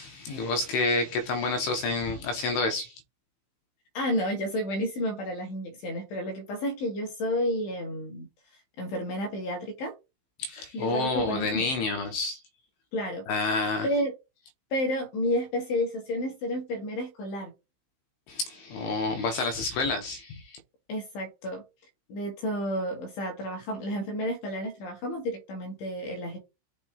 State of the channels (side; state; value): right; late; 15 ms